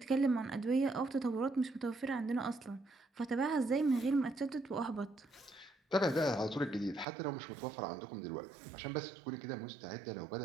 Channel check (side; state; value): left; drops out; at 7.1 s